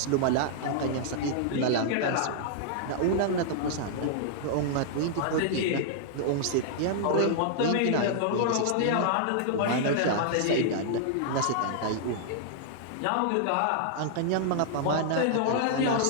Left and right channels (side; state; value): both; different; correlation -0.01